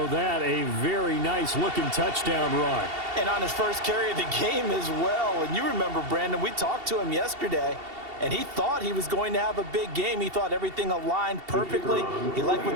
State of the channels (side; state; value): left; late; 2.7 ms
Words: that a very nice-looking touchdown run. And on his first carry of the game as well. And you remember, Brandon, we talked to him yesterday. And he thought he was going to have a big game. He thought everything aligned perfectly. He liked what